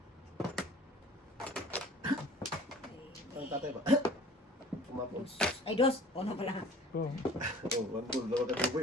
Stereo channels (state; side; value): normal; both; correlation 0.46